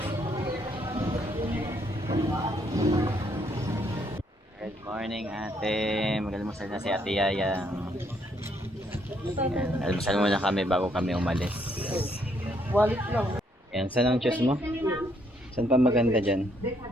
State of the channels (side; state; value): both; normal; correlation 0.71